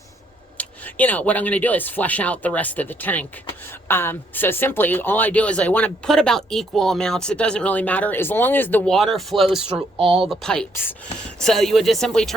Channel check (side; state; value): both; normal; correlation 0.70